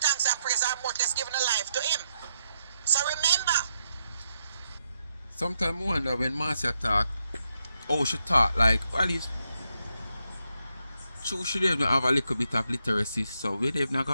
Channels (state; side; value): inverted; both; correlation -0.81